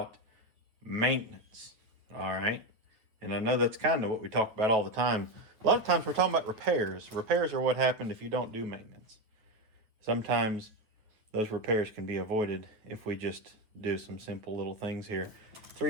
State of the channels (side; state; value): left; late; 9.0 ms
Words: maintenance. All right. And I know that's kind of what we talk about all the time. A lot of times we're talking about repairs. Repairs are what happened if you don't do maintenance. Sometimes those repairs can be avoided if we just do some simple little things here.